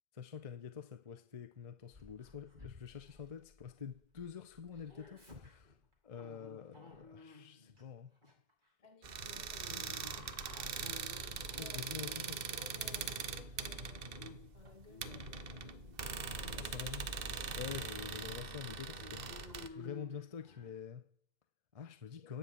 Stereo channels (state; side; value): late; left; 2.0 ms